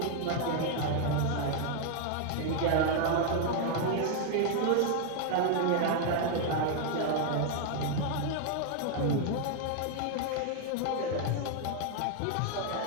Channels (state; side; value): different; both; correlation 0.00